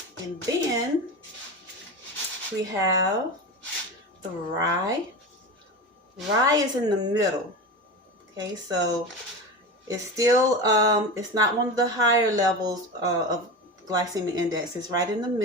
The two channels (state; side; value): normal; both; correlation 0.25